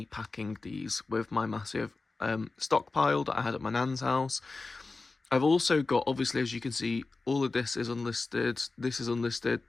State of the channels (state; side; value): quieter; right; 3.7 dB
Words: packing these with my massive stockpile that I had at my nan's house. I've also got, obviously, as you can see, all of this is unlisted, this is unlisted,